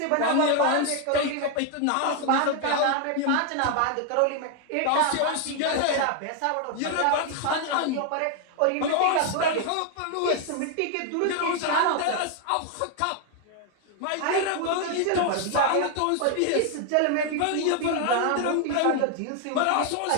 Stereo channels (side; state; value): both; different; correlation 0.00